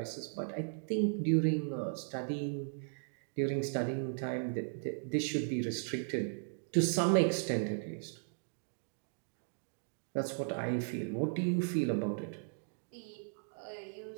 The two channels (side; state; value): left; silent; digital silence